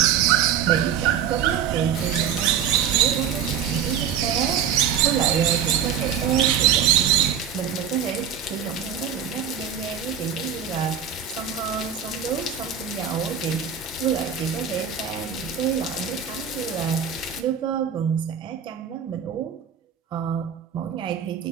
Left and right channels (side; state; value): left; quieter; 8.2 dB